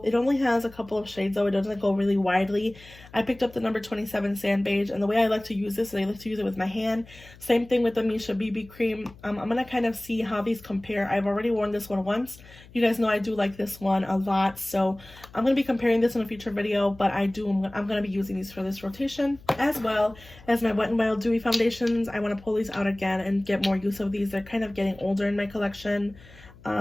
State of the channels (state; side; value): noise; left; hum, 22 dB below the sound